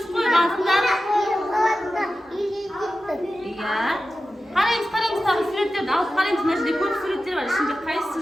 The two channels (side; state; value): both; normal; correlation 0.93